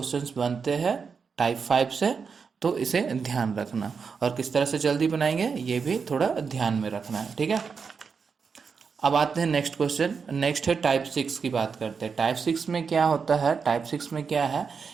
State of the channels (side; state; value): left; quieter; 5.7 dB